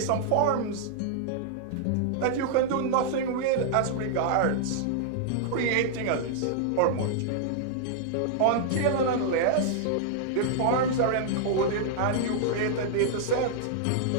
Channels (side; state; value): both; different; correlation -0.01